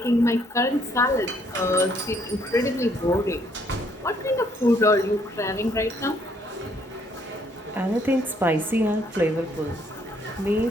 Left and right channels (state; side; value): normal; both; correlation 0.67